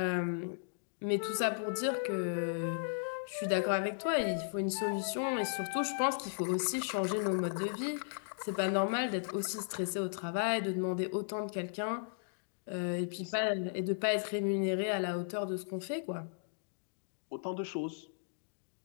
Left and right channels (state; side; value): silent; right; digital silence